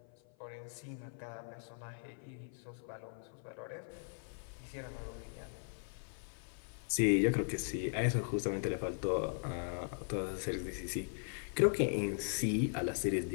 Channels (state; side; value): silent; right; 52 dB below the other